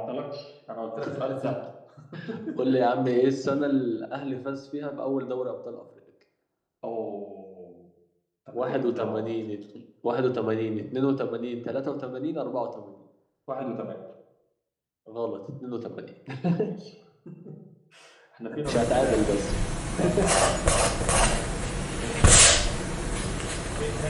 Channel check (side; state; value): both; identical; correlation 1.00